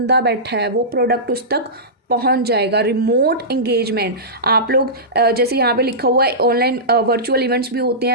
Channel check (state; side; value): normal; both; correlation -0.17